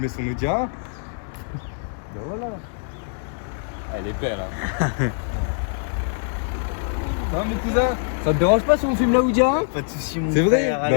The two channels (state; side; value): silent; right; 63 dB below the other